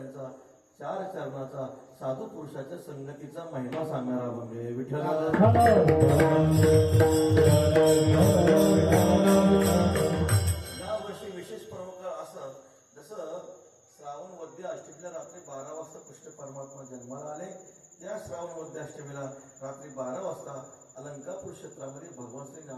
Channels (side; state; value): both; identical; correlation 1.00